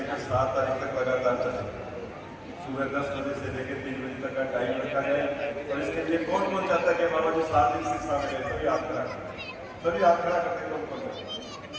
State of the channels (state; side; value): identical; both; correlation 1.00